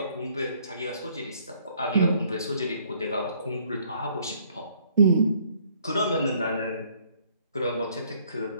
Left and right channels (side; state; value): both; inverted; correlation -0.63